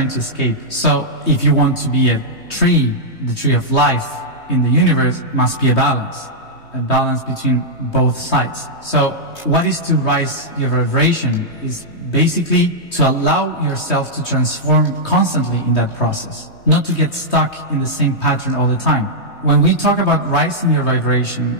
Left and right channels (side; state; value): right; late; 3.2 ms